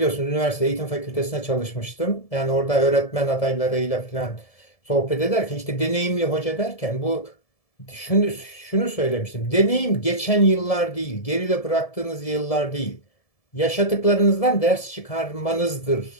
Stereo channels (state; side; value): late; right; 1.7 ms